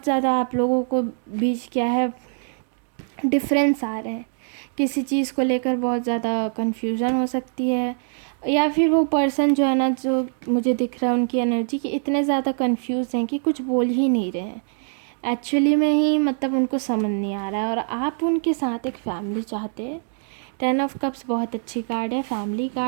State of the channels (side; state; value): left; silent; digital silence